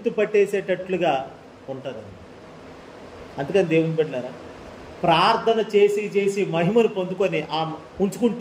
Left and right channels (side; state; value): both; identical; correlation 1.00